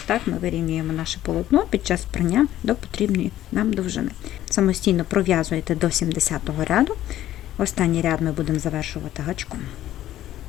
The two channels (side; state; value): right; quieter; 13.2 dB